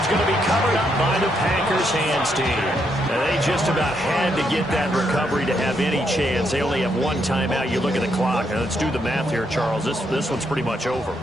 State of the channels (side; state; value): both; normal; correlation 0.77